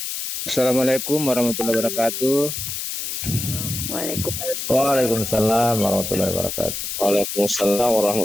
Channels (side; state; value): left; noise; hiss, 5 dB below the sound